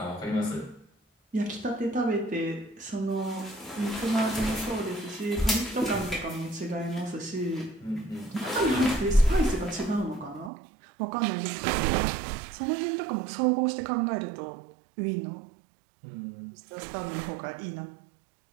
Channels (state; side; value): drops out; left; at 10.5 s